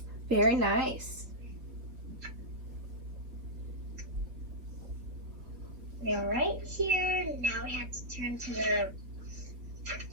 Very nice. We're right here. Now we have to turn to the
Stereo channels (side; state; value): left; late; 3.5 ms